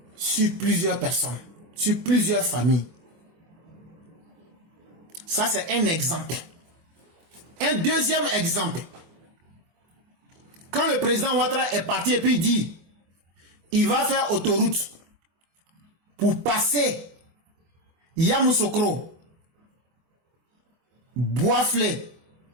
sur plusieurs personnes. Sur plusieurs familles. Ça, c'est un exemple. Un deuxième exemple. Quand le président Ouattara est parti et puis il dit, il va faire autoroute pour passer Yamoussoukro, Boisflé,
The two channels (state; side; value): late; left; 24 ms